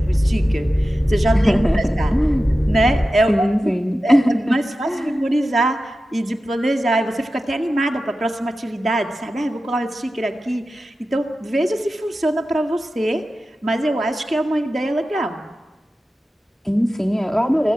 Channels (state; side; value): normal; both; correlation 0.93